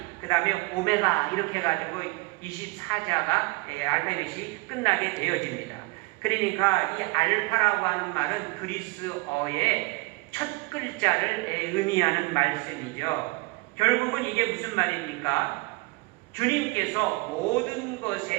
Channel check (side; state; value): left; quieter; 25.4 dB